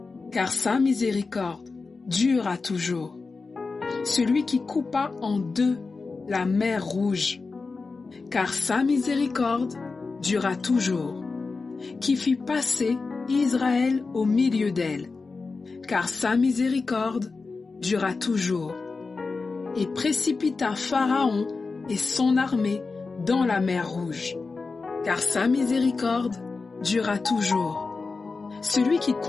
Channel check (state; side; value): quieter; right; 4.2 dB